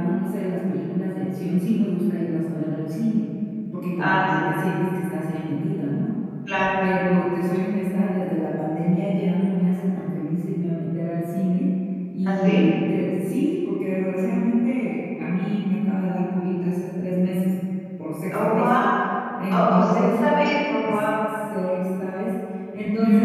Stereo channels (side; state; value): both; identical; correlation 1.00